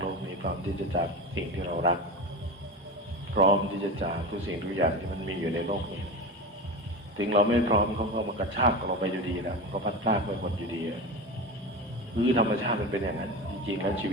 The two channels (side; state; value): both; normal; correlation 0.25